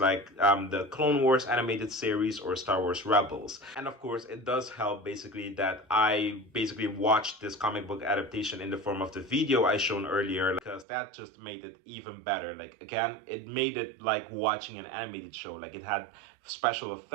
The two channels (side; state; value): left; drops out; at 10.9 s